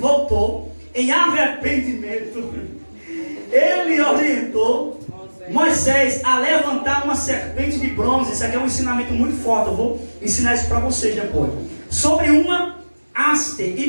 em arrependimento, ele orientou Moisés a levantar uma serpente de bronze. Isso aqui é um ensinamento muito forte, eu vou ensinar isso para vocês depois. Sobre uma haste,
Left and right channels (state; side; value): inverted; both; correlation -1.00